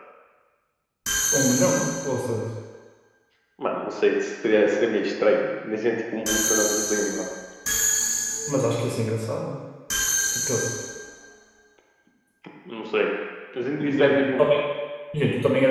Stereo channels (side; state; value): both; identical; correlation 1.00